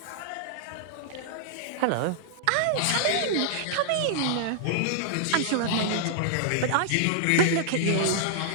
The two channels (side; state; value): both; different; correlation -0.01